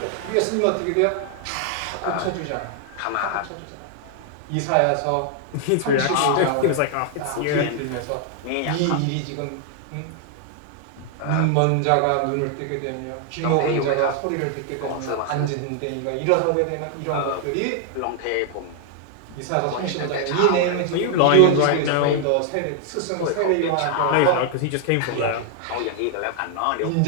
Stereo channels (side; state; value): both; different; correlation 0.00